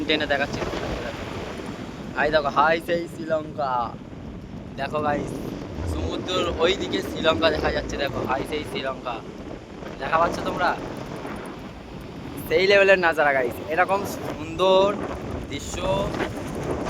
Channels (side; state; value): both; identical; correlation 1.00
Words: টেনে দেখাচ্ছে। হাই দেখো, হাই সেই শ্রীলঙ্কা। দেখো গাইস, সমুদ্রের ওই দিকে শ্রীলঙ্কা দেখা যাচ্ছে। দেখো হাই সেই শ্রীলঙ্কা দেখা পাচ্ছ তোমরা। সেই লেভেলের নাজারা গাইস, এরকম সুন্দর দৃশ্য